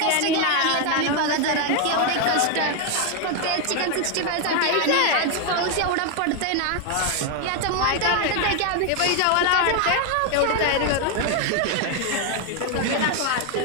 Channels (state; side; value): different; both; correlation 0.01